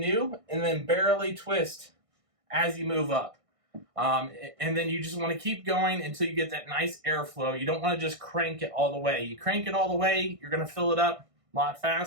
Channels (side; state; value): left; late; 1.6 ms